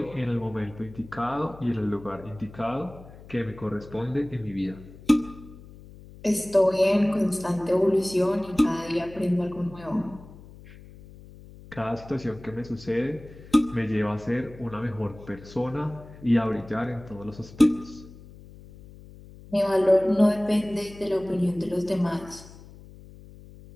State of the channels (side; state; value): left; noise; hum, 19 dB below the sound